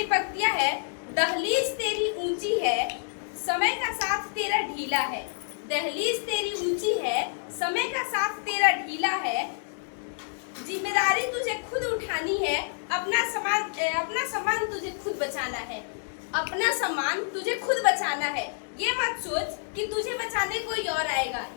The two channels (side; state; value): right; silent; digital silence